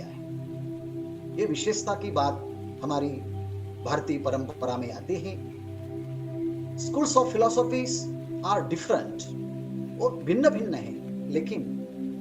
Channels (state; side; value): identical; both; correlation 1.00